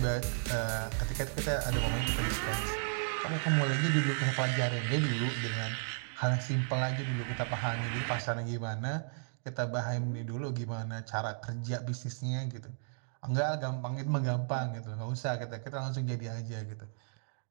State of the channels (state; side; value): silent; left; digital silence